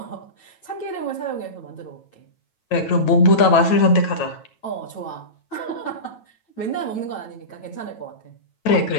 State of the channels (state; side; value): late; right; 9.1 ms